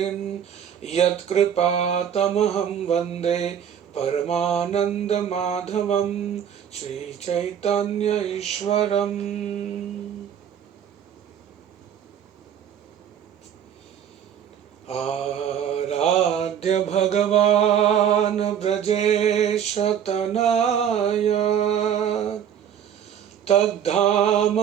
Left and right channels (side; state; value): left; quieter; 8.8 dB